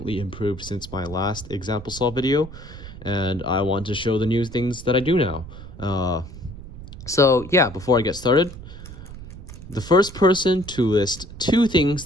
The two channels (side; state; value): right; noise; rumble, 13 dB below the sound